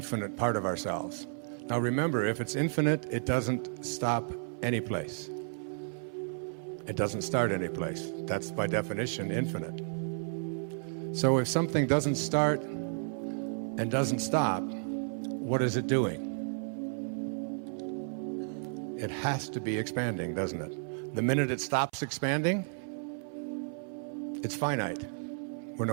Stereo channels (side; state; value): left; silent; 56 dB below the other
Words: part of ourselves. Now remember, if it's infinite, it doesn't stop any place. It doesn't start any place. That's by definition infinite. So if something doesn't start and doesn't stop, what is it doing? It has to be expanding, doesn't it? The minute it stops expanding, it's finite. We're